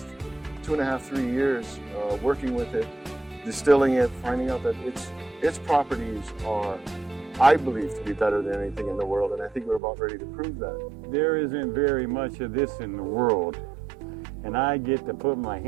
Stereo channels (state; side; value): drops out; left; at 9.8 s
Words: 2.5, 3 years, working with it, distilling it, finding out that its properties are, I believe, to be better than anything in the world, and I think we're about ready to prove that. There isn't very much of this in the world, and I get to put my